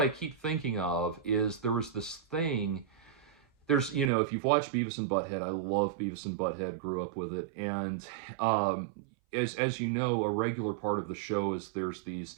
I keep thinking of is there was this thing. There's, if you've watched Beavis and Butthead, I love Beavis and Butthead, grew up with it, and as you know, a regular part of the show is there's these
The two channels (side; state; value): left; drops out; at 4.1 s